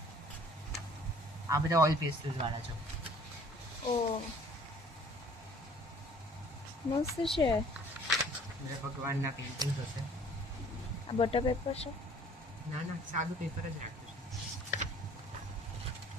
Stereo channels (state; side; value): normal; both; correlation 0.54